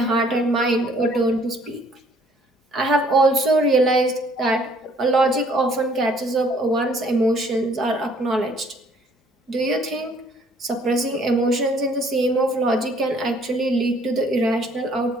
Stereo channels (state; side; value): normal; both; correlation 0.60